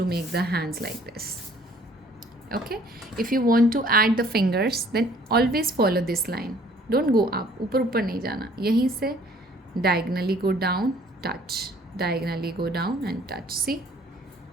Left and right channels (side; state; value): both; normal; correlation 0.57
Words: make the hands like this. Okay, if you want to add the fingers, then always follow this line. Don't go up, ऊपर ऊपर नहीं जाना. यहीं से diagonally go down, touch. Diagonally go down and touch. See?